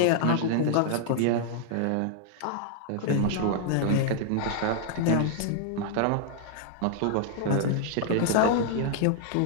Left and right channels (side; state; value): both; different; correlation -0.01